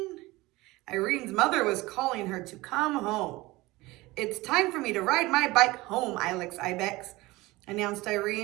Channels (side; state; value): left; quieter; 20.5 dB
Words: Irene's mother was calling her to come home. It's time for me to ride my bike home, Ilex Ibex, announced